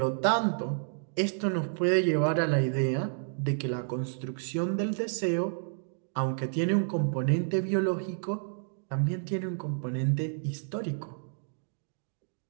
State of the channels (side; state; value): left; silent; digital silence